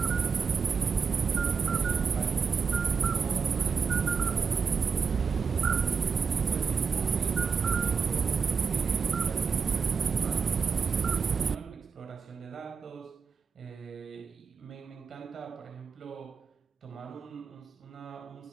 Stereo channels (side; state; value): left; quieter; 5.7 dB